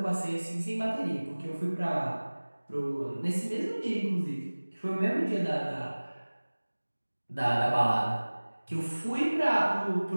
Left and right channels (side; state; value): both; inverted; correlation -1.00